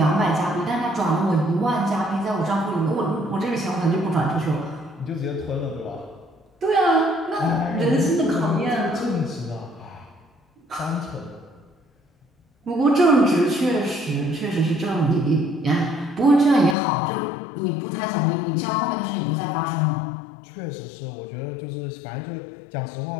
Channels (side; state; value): right; drops out; at 16.8 s